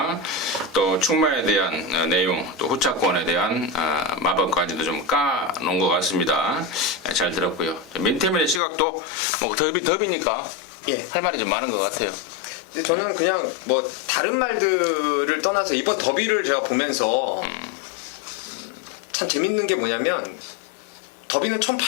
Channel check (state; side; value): drops out; right; at 8.6 s